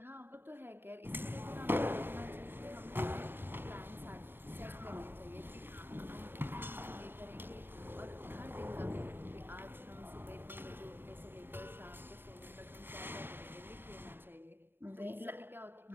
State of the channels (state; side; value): late; left; 0.10 ms